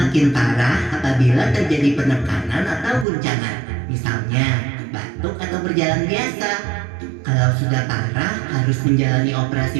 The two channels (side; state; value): left; drops out; at 3.1 s